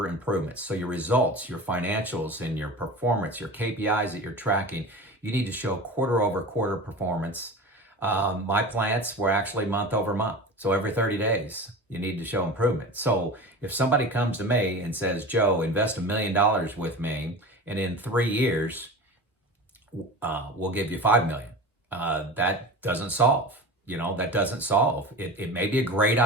improvements. So your results, your financials, and your performance, your KPIs that you're tracking, you need to show quarter over quarter performance. My plants were actually month over month. So every 30 days, you need to show improvement. So if somebody comes to me and says, Joe, invest $1 million with me, and in 3 years, we'll give you $5 million. That doesn't solve. That doesn't solve. It may be a great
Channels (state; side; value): normal; both; correlation 0.32